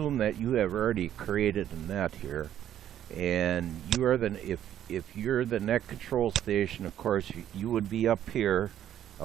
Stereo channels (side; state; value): left; quieter; 11.0 dB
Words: that you have already created a net here, and you are if you're the net control station, of course you would be up here.